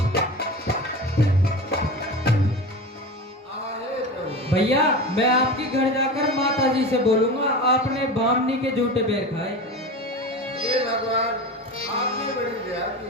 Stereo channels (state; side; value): normal; both; correlation 0.28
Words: अरे प्रभु, भैया मैं आपके घर जाकर माता जी से बोलूंगा आपने बामनी के झूठे बेर खाए। ये भगवान आपने बड़ी दया